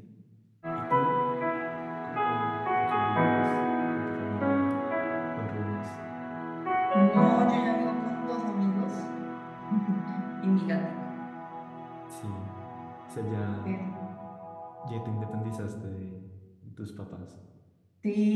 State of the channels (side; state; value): both; identical; correlation 1.00